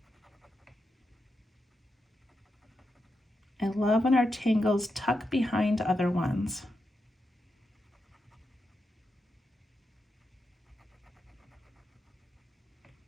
I love when our tangles tuck behind other ones.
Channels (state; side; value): normal; both; correlation 0.86